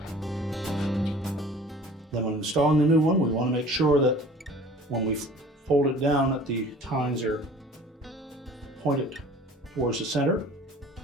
Then when installing the new one, we want to make sure that when we fold it down that the tines are pointed towards the center.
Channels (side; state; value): both; normal; correlation 0.46